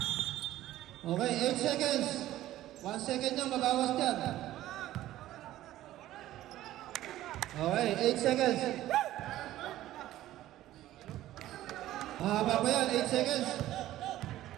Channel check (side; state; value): left; quieter; 14.5 dB